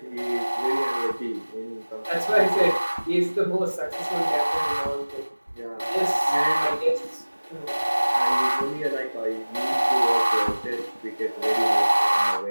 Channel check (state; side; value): inverted; both; correlation -1.00